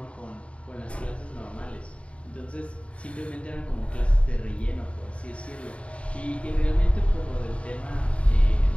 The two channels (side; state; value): right; late; 0.062 ms